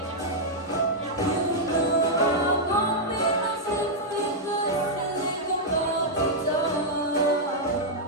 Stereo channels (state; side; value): normal; both; correlation -0.05